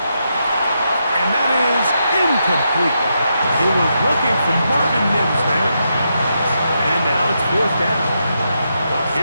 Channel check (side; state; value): both; inverted; correlation -0.83